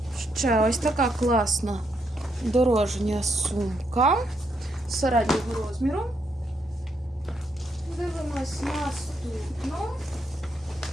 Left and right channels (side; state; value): both; normal; correlation 0.77